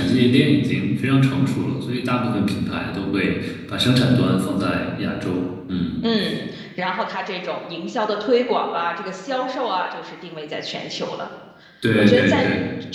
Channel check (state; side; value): identical; both; correlation 1.00